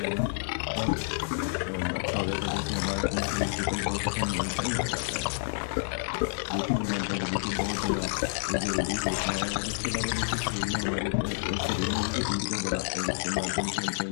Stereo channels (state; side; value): silent; right; digital silence